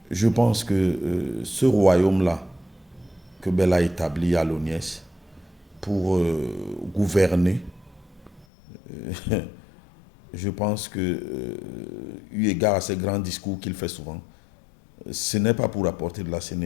je pense que ce royaume-là que Bell a établi à l'ONIES pour gouverner, je pense que, eu égard à ces grands discours qu'il fait souvent, ce n'est pas pour apporter de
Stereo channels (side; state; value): right; drops out; at 8.5 s